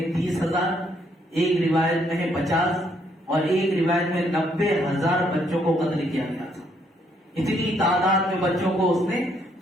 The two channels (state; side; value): normal; both; correlation 0.71